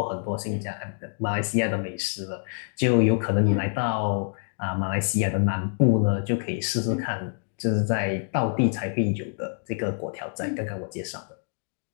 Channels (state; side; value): silent; right; digital silence